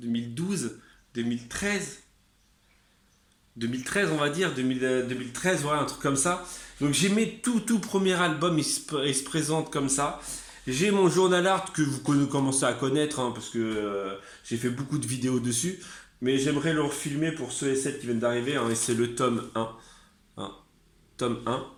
2013. 2013 on va dire, 2013, voilà, un truc comme ça. Donc j'ai mes tout premier album, il se présente comme ça. J'ai mon journal art que vous commencez à connaître, hein, parce que j'ai fait beaucoup de vidéos dessus. Mais j'aimerais le refilmer pour ceux et celles qui viennent d'arriver, hein, et c'est le tome 1. Hein, tome 1.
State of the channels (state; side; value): identical; both; correlation 1.00